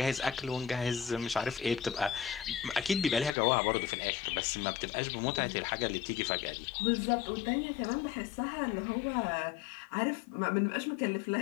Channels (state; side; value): drops out; right; at 3.3 s